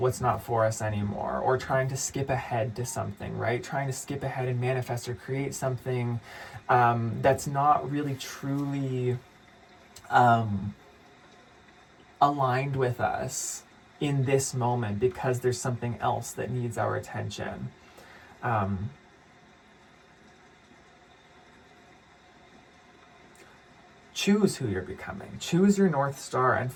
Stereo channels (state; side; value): identical; both; correlation 1.00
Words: not for us anymore, or trying to skip ahead to something, right? Trying to skip ahead and manifest or create something that's not really truly aligned with us in this moment because there's something else that needs our attention. Choose who you're becoming. Choose your North Star and